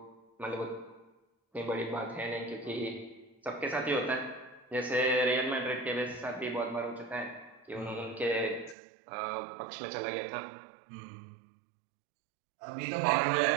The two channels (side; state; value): left; drops out; at 8.8 s